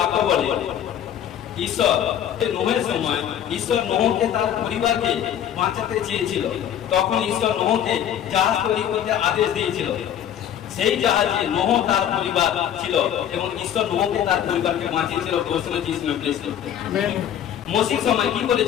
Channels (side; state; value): right; quieter; 10.1 dB